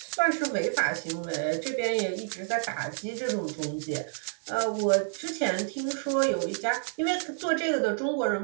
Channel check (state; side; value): silent; left; digital silence